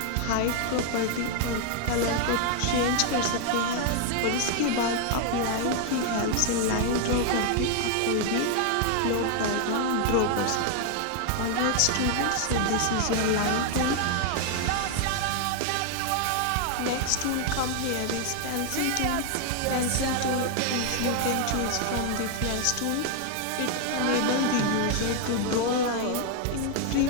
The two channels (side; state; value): both; different; correlation 0.00